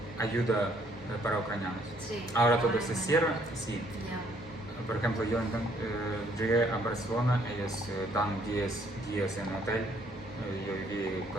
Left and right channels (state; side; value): normal; both; correlation 0.65